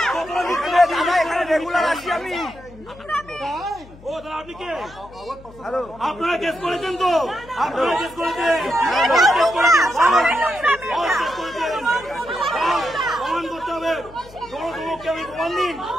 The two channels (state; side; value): noise; left; hum, 21 dB below the sound